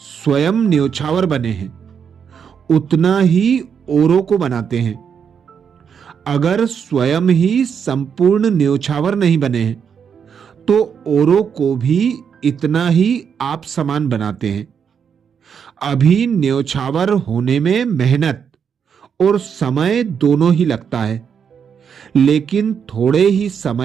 न्योछावर बने हैं उतना ही औरों को बनाते हैं। अगर स्वयं ही संपूर्ण न्योछावर नहीं बने हैं तो औरों को भी इतना ही आप समान बनाते हैं। अभी न्योछावर होने में मेहनत और समय दोनों ही लगता है, लेकिन थोड़े ही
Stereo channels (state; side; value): quieter; left; 7.2 dB